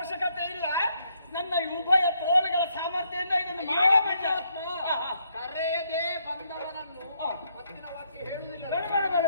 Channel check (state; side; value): inverted; both; correlation -0.73